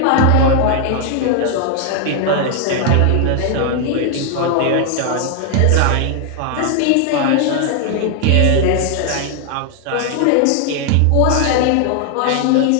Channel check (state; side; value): different; both; correlation 0.00